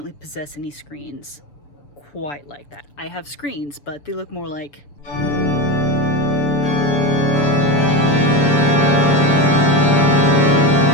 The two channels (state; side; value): late; right; 7.0 ms